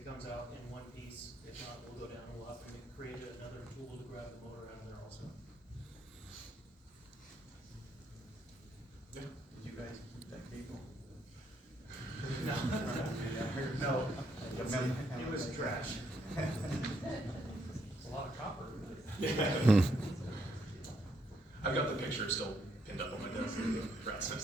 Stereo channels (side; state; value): both; normal; correlation 0.75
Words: comes out in one piece, if not, we'll go down and we'll have to create another tool to grab the motor out of there also. Yeah. Did you guys keep that cable? No, it was trash. It's a lot of copper. Yeah. I've got the picture still pinned up on my desk, the rat's